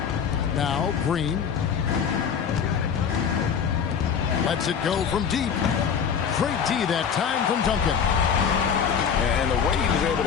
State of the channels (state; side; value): quieter; right; 7.2 dB